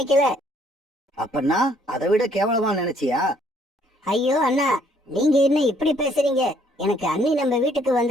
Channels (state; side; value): normal; both; correlation 0.65